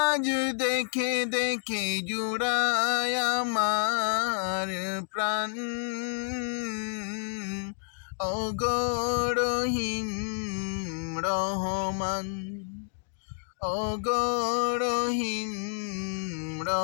দেখে দেখে, জুড়ায় আমার প্রাণ। ওগো রহিম রহমান, ওগো রহিম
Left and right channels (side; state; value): right; silent; digital silence